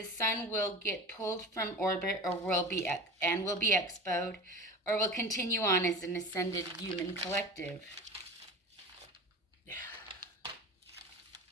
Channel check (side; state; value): both; normal; correlation 0.33